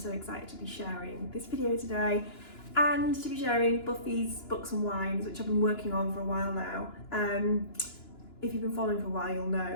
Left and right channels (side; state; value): right; late; 2.9 ms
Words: excited to be sharing this video today and to be sharing Buffy's Books and Wines, which I've been working on for a while now. If you've been following for a while, you'll